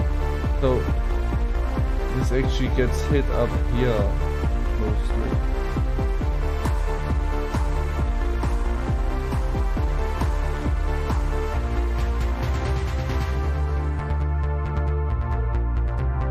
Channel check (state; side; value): identical; both; correlation 1.00